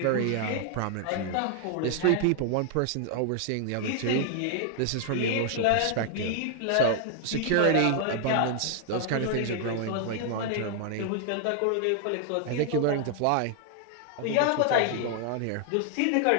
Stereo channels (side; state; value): both; different; correlation 0.00